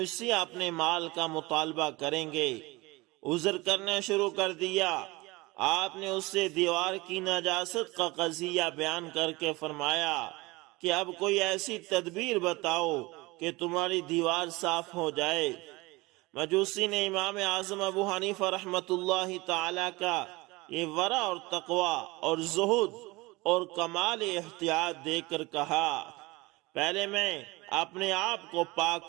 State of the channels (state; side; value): quieter; left; 22.7 dB